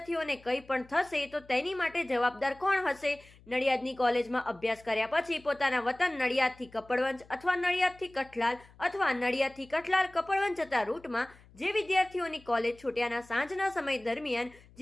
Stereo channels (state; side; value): noise; left; hum, 25 dB below the sound